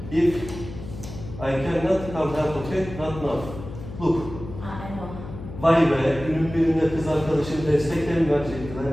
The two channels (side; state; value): left; noise; hum, 12 dB below the sound